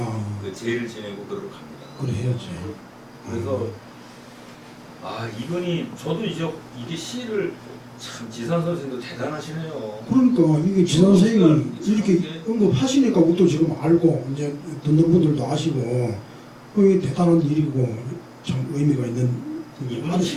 그 제를 지내고 그러러 갑니다. 그래 해야지. 그래서 이분이 저도 이게 시를 참 지산 선생도 대단하시네요. 그러니까 이게 지 선생이 이렇게 이게- 언급하시니까 우리도 지금 알고 이제 듣는 분들도 아시고 그게 대단한 일이고 참 의미가 있는 이분은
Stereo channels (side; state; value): both; identical; correlation 1.00